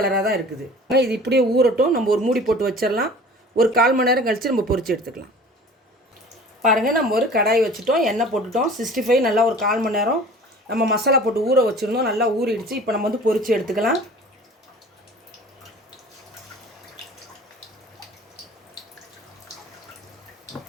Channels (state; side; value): normal; both; correlation 0.44